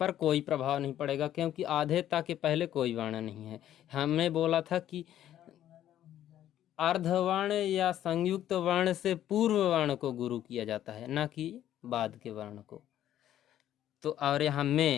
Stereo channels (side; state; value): right; quieter; 11.7 dB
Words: कोई प्रभाव नहीं पड़ेगा क्योंकि आधे ता के पहले कोई वर्ण नहीं है। हमने बोला था कि अर्धवर्ण या संयुक्त वर्ण से पूर्व वर्ण को गुरु किया जाता है, ना कि बाद के वर्ण को। तो और यहाँ